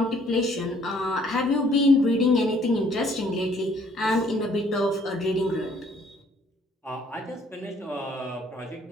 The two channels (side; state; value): both; normal; correlation 0.62